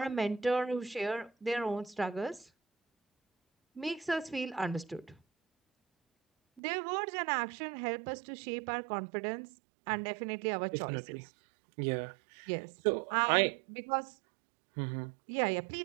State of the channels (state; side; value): drops out; left; at 6.6 s